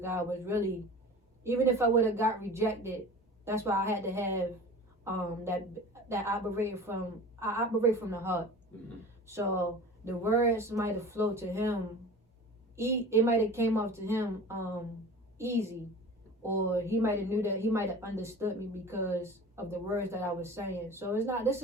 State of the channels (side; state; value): both; normal; correlation 0.39